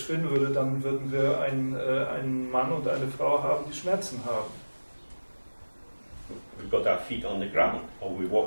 würde, dann würden wir einen Mann und eine Frau haben, die Schmerzen haben. We've got our feet on the ground, or we're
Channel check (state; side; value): inverted; both; correlation -1.00